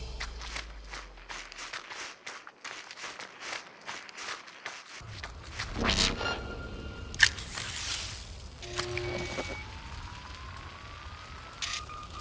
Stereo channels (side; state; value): both; identical; correlation 1.00